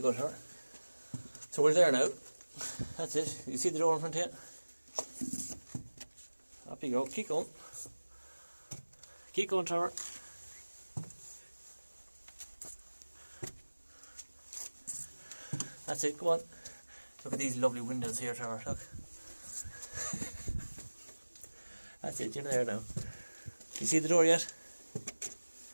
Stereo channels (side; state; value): both; inverted; correlation -1.00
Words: go, Trevor. So we're there now. That's it. You see the door in front of you? Up you go. Keep going. Keep going, Trevor. That's it. Go on. Look at these lovely windows here, Trevor. Look. That's it. You're there now. You see the door yet?